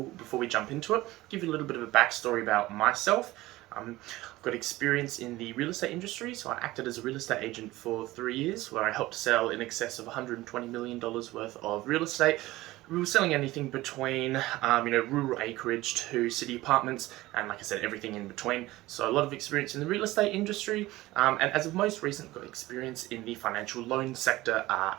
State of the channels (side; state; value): left; quieter; 18.1 dB